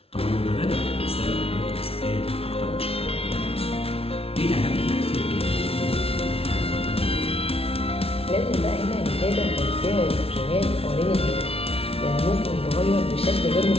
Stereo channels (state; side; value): late; right; 0.28 ms